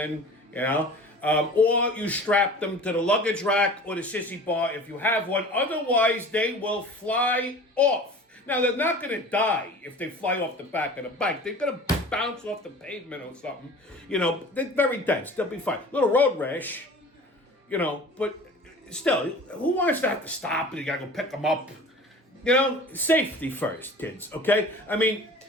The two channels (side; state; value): both; normal; correlation 0.41